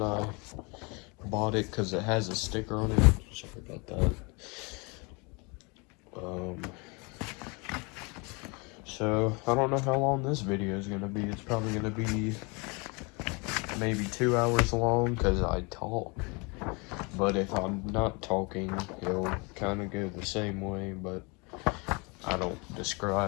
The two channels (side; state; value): right; quieter; 29.6 dB